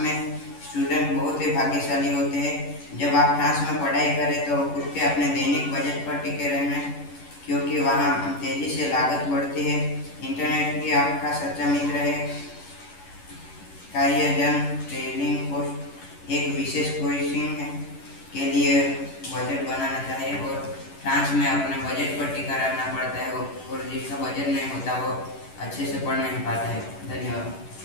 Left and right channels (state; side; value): late; right; 11 ms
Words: स्टूडेंट बहुत ही भाग्यशाली होते हैं। जब आप फ्रांस में पढ़ाई करें तो खुद के अपने दैनिक बजट पर टिके रहना, क्योंकि वहाँ तेजी से लागत बढ़ती है। इंटरनेट भी आपका सच्चा मित्र है। कार्यजन ट्रेनिंग पोस्ट एक विशेष कोचिंग के लिए बजट बनाना चाहिए और फ्रांस में अपने बजट पर टिका रहना पड़ता है और जिसका बजट नहीं होता वो अच्छे से पढ़ नहीं पाता है। धन्यवाद।